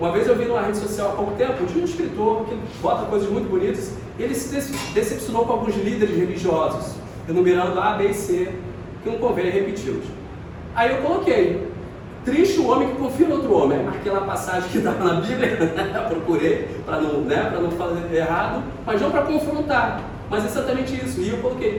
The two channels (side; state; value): both; identical; correlation 1.00